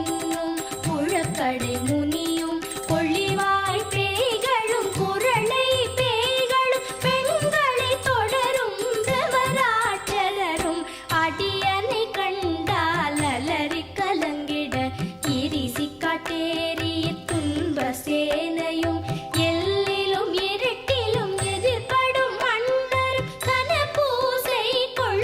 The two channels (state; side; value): identical; both; correlation 1.00